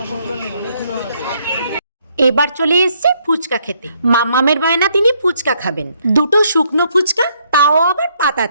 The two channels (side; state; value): both; inverted; correlation -0.71